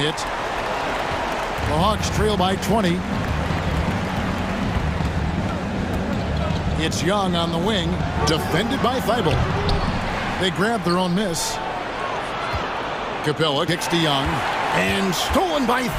The Hawks trail by 20. It's Young on the wing. Defended by Thybulle. They grab their own miss. Capella kicks to Young. And stolen by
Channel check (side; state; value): both; identical; correlation 1.00